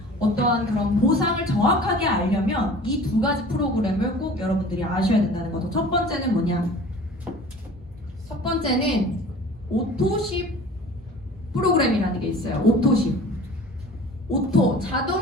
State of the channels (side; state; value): both; normal; correlation 0.44